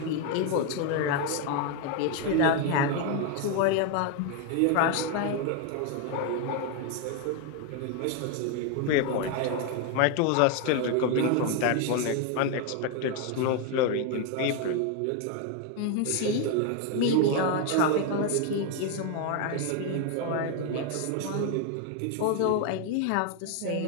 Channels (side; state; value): both; different; correlation 0.01